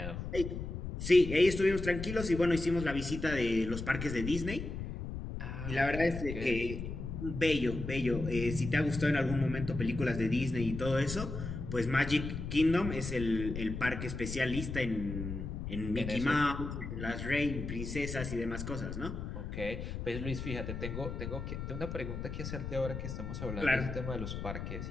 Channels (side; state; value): left; noise; rumble, 6 dB below the sound